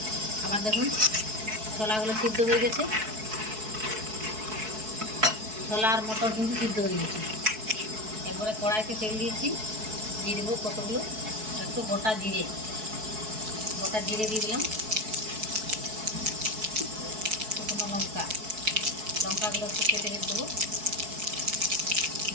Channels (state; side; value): late; left; 4.6 ms